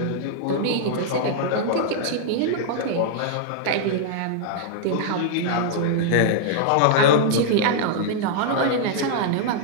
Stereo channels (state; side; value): different; both; correlation -0.01